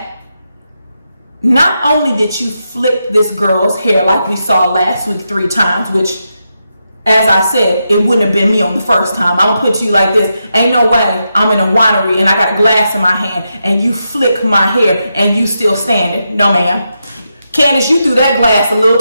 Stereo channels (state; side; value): inverted; both; correlation -0.86